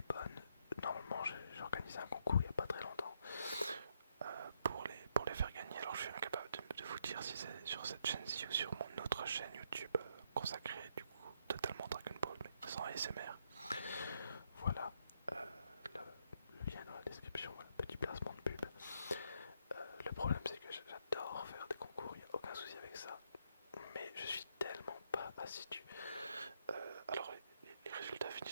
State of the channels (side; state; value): both; inverted; correlation -0.75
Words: bonne, normalement j'ai organisé un concours il n'y a pas très longtemps pour les faire gagner. Alors je suis incapable de vous dire si c'est sur cette chaîne-ci ou sur mon autre chaîne YouTube consacrée du coup totalement Dragon Ball mais sans ASMR. Voilà, le lien dans la description, voilà, petit placement de pub. Le problème c'est que j'adore faire des concours, il n'y a aucun souci avec ça, mais je suis tellement pas assidu. Alors les résultats